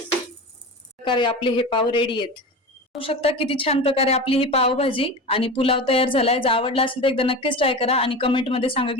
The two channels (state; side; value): normal; both; correlation 0.28